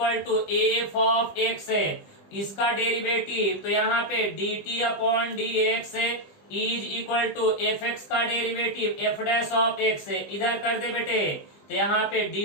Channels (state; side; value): late; right; 20 ms